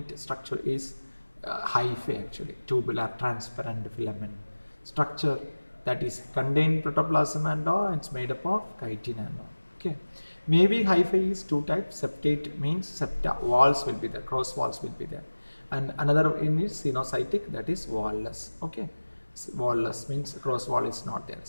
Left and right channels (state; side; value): inverted; both; correlation -1.00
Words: structure is hyphae, actually, tubular transparent filament structure that is contained protoplasm and all. It's made up of chitin and all. Okay, maybe hyphae is two types. Septate means septa, walls will be there, cross walls will be there, and another one is sinusotic, that is wall-less. Okay, wall-less means cross wall is not there,